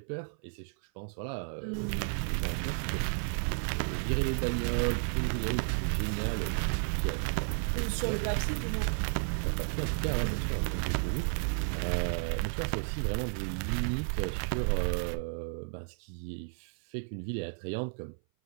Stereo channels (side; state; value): left; silent; 56 dB below the other